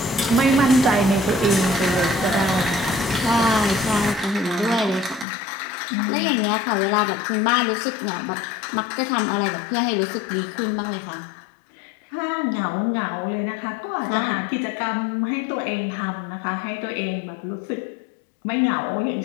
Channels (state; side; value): drops out; right; at 5.2 s